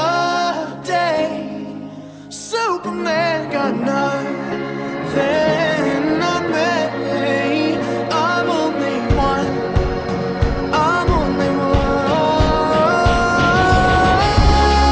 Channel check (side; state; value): both; identical; correlation 1.00